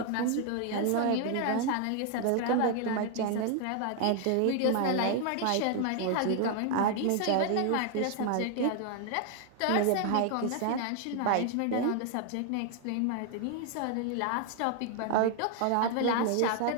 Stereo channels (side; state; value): both; different; correlation 0.00